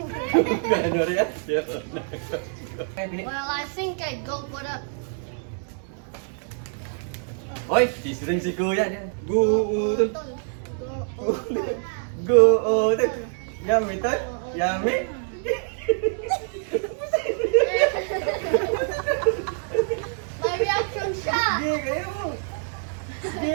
No reaction. Well, I think I'd go for the. Hoy, sisring si kuya. Go, utol. Go, utol. Yummy, tol. Yummy. My reaction shot. Sige, kayo mo.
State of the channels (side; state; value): left; silent; digital silence